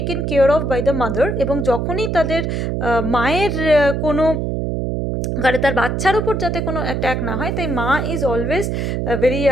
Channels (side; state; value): right; noise; hum, 1 dB below the sound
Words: care of by the mother, এবং যখনই তাদের মায়ের কোনো তার বাচ্চার উপর যাতে কোনো অ্যাট্যাক না হয়, তাই মা ইজ অলওয়েজ ভেরি